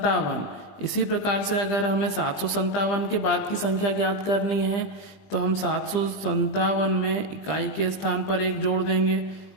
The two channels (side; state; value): right; late; 20 ms